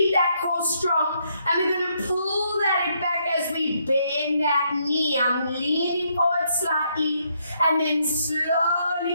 that core strong. And we're going to pull that back as we bend that knee. I'm leaning forward slightly and then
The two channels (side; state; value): both; inverted; correlation -0.74